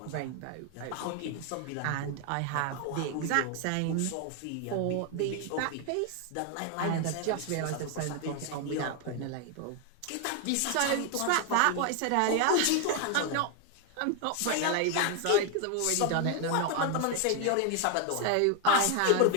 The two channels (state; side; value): different; both; correlation 0.01